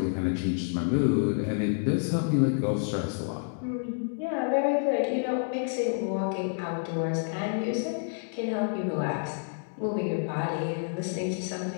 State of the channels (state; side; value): silent; right; digital silence